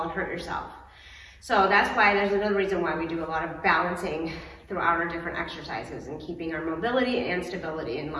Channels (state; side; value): identical; both; correlation 1.00